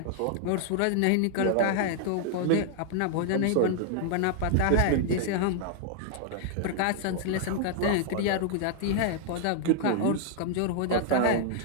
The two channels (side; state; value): both; different; correlation -0.01